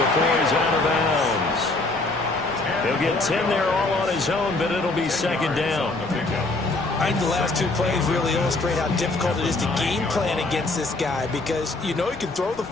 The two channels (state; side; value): quieter; right; 3.1 dB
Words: he's out of bounds. He'll get 10 there all on his own, but it'll be second down. I think the last two plays really illustrate how difficult it is to game plan against this guy because you know he can throw the